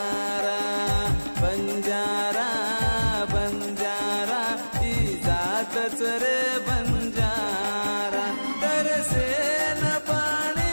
बंजारा बंजारा ई जातच रे बंजारा। तरसे न पाणी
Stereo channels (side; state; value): both; inverted; correlation -1.00